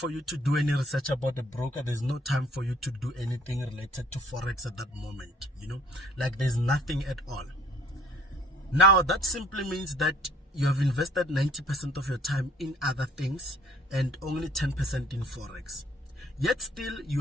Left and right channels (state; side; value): normal; both; correlation 0.56